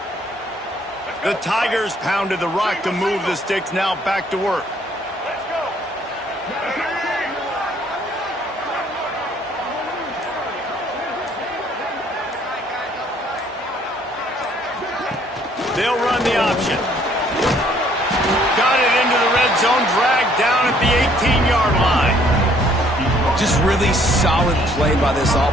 The Tigers pounded the rock to move the sticks, now back to work. Let's go. They'll run the option. Got it into the red zone, dragged down at the 18-yard line. Just really solid play by this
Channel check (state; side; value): normal; both; correlation 0.62